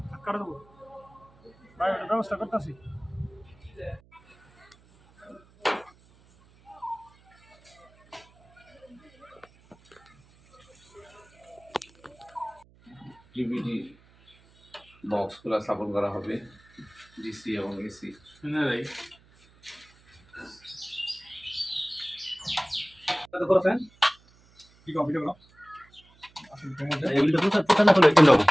কাটা দেবো ভাই ওটা ব্যবস্থা করতেছি ডিভিডি বক্সগুলো স্থাপন করা হবে ডিসি এবং এসি না ভাই কত করছেন কি কম্পিউটার করো এগুলো তো প্রচার না করলে কেন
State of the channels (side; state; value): right; noise; hum, 29 dB below the sound